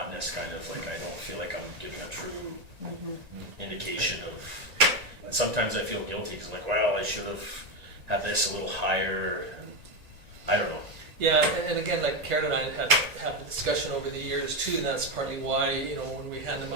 kind of like I don't feel like I'm giving a true indication of. And sometimes I feel guilty because, like, well, I should have had this a little higher, and I don't know. Yeah, and again, like Karen and I have a discussion over the years too, and that's partly why, you know, when we hand them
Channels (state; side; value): late; left; 1.9 ms